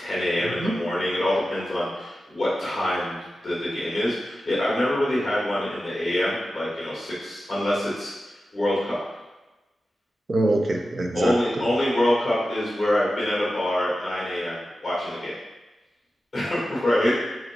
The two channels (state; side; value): normal; both; correlation 0.93